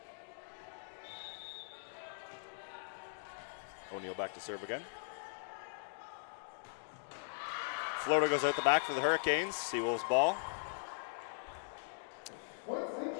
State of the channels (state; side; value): silent; right; digital silence